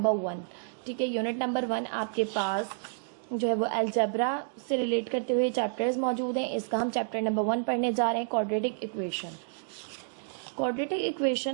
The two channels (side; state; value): left; silent; digital silence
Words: 1। ठीक है, यूनिट नंबर 1 आपके पास जो है वो अलजेब्रा से रिलेट करते हुए चैप्टर्स मौजूद हैं। इसका हम चैप्टर नंबर 1 पढ़ने जा रहे हैं, क्वाड्रेटिक इक्वेशन। क्वाड्रेटिक